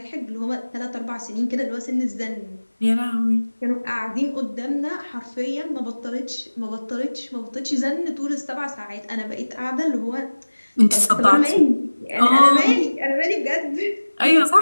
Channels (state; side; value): inverted; both; correlation -1.00